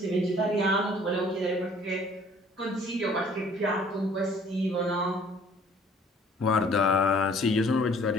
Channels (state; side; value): normal; both; correlation 0.55